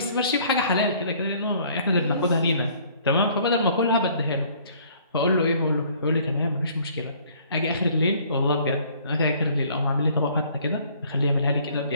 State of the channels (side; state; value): both; inverted; correlation -0.58